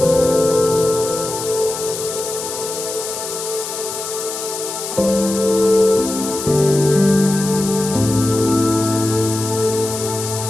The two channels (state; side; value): noise; left; hiss, 7 dB below the sound